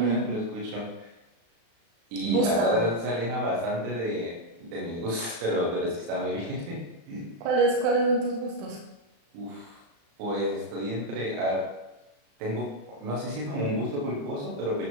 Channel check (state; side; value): late; left; 35 ms